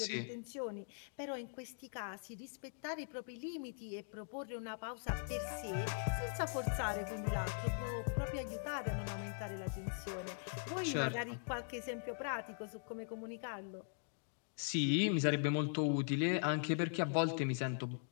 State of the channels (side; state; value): right; silent; digital silence